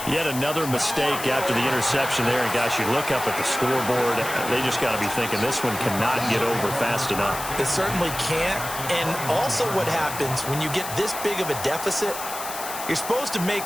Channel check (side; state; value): left; noise; hiss, 9 dB below the sound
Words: Yet another mistake after the interception there. And, gosh, you look up at the scoreboard, they just got to be thinking this one cannot get over fast enough. It certainly can't. And also what happens when you get this big of a deficit, you're supposed to